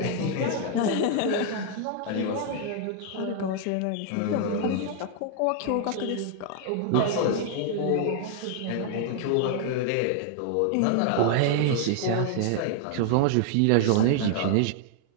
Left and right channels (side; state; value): both; different; correlation 0.00